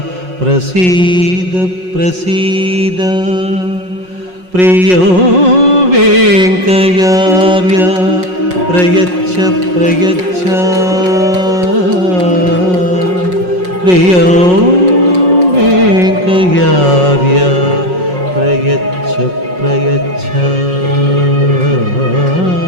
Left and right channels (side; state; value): left; late; 5.5 ms